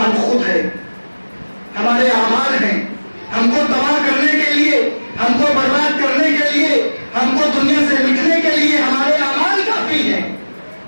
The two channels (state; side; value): inverted; both; correlation -1.00